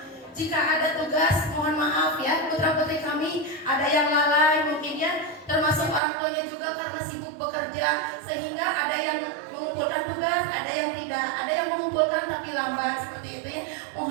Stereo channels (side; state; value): left; drops out; at 6.0 s